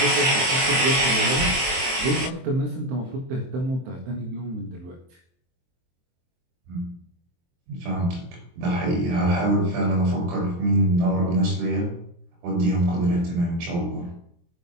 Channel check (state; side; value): late; left; 23 ms